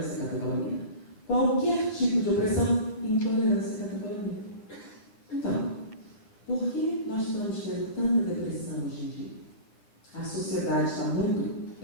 catecolamina. Qualquer tipo de opressão? Intolerância catecolamina. Então, por que nós estamos tendo tanta depressão hoje em dia? A sociedade está muito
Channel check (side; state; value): right; late; 9.6 ms